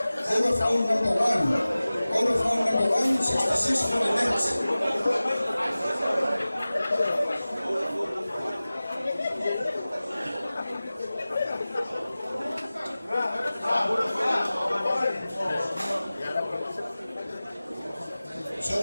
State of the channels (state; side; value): inverted; both; correlation -0.97